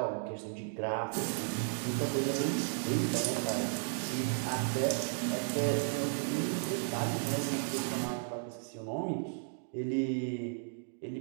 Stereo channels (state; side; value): silent; left; digital silence